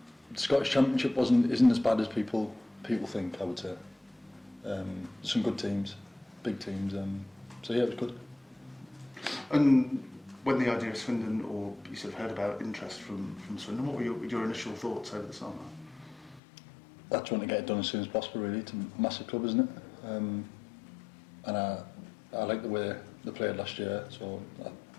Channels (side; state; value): right; drops out; at 16.4 s